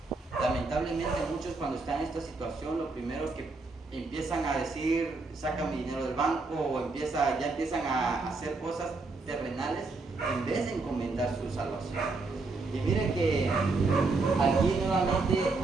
Lamentablemente muchos, cuando están en esta situación, lo primero que empiezan a decir: saca mi dinero del banco, o ya empiezan a hacer cosas terrenales en vez de encomendar su salvación. Y mire que aquí nuevamente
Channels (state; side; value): quieter; left; 3.7 dB